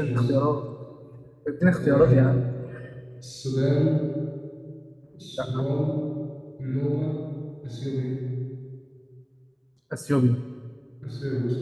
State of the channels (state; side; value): identical; both; correlation 1.00